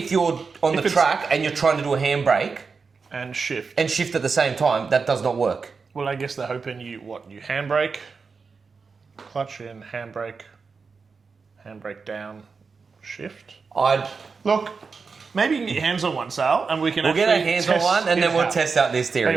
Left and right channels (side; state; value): left; quieter; 4.9 dB